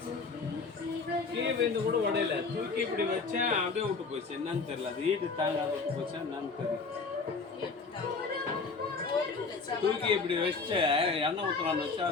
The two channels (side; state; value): right; quieter; 4.4 dB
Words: கீழே விழுந்து கூட உடையில தூக்கி இப்படி வச்சேன் அப்படியே விட்டு போச்சு. என்னன்னு தெரியல. அது ஈடு தாங்காத விட்டு போச்சா என்னன்னு தெரியும். தூக்கி இப்படி வச்ச எண்ணெய் ஊற்றலான்னு வச்சா